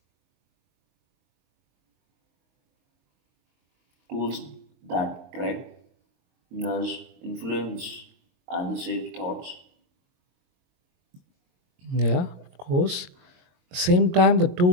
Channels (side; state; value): left; late; 22 ms